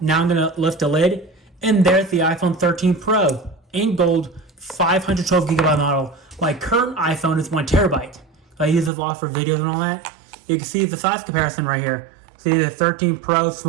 Now I'm going to lift the lid, and there's the iPhone 13 Pro in gold 512GB model. My current iPhone is 1TB. I use it a lot for videos and all that. You can see the size comparison right here. See the 13 Pro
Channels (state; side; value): drops out; left; at 8.9 s